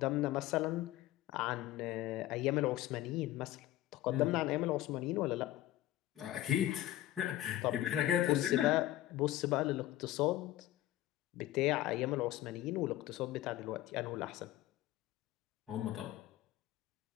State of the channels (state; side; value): quieter; right; 14.6 dB